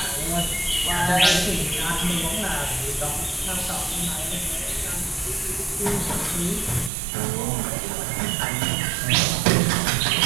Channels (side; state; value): left; drops out; at 6.9 s